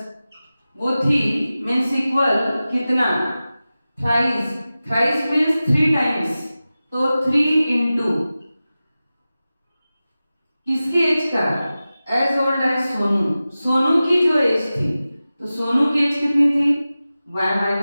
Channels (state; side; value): inverted; both; correlation -0.95